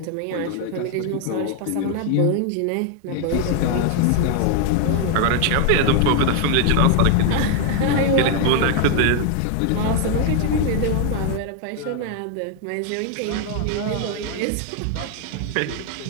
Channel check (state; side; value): different; both; correlation 0.00